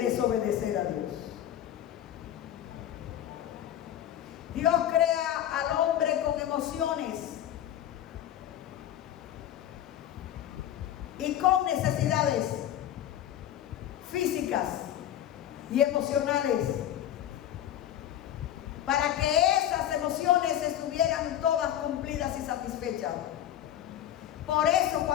a Dios. Dios crea al hombre con emociones y con necesidades físicas y emocionales, para que esas emociones estuvieran todas cumplidas y satisfechas. Por eso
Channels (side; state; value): right; quieter; 11.4 dB